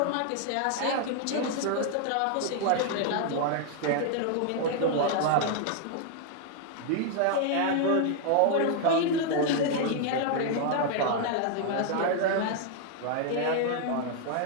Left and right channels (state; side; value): different; both; correlation 0.00